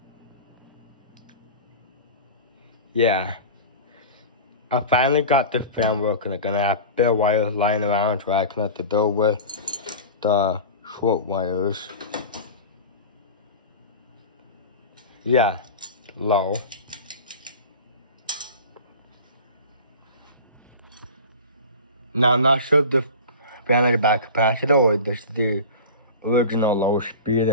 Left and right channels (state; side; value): inverted; both; correlation -0.33